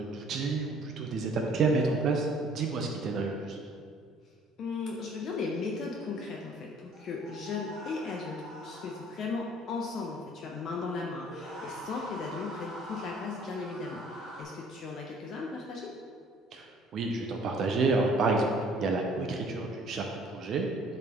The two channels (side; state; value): both; normal; correlation 0.56